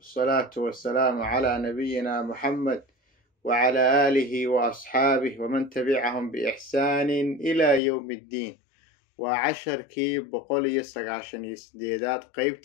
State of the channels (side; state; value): right; drops out; at 7.8 s